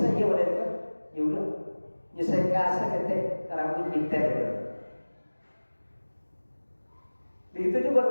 dia udah kan, ya udah nyesek kasa ketek rambut binter gitu. Begitu juga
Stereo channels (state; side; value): inverted; both; correlation -1.00